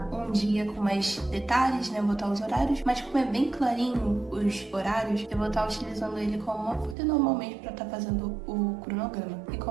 um dia com mais detalhes, né? Botar os horários, mas como é bem clarinho os horários, eu vou estar utilizando ele como uma folha normalmente para estar fazendo o cronograma. E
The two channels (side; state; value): left; drops out; at 7.0 s